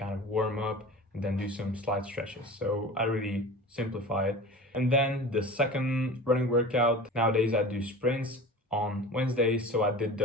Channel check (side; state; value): both; normal; correlation 0.36